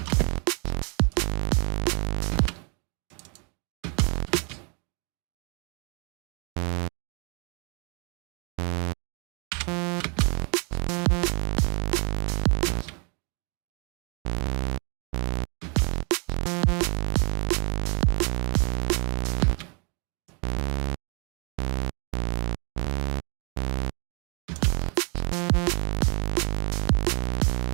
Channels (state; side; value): quieter; left; 35.4 dB